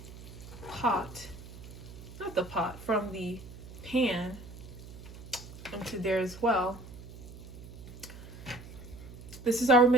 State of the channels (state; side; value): noise; right; hum, 14 dB below the sound